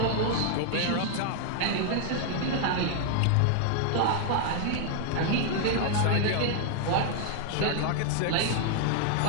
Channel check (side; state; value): both; different; correlation 0.00